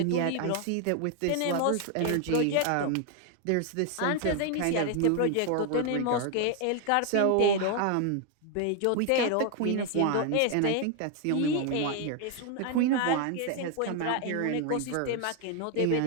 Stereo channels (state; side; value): different; both; correlation 0.00